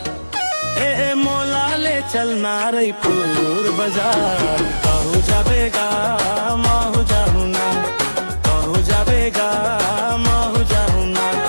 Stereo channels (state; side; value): inverted; both; correlation -1.00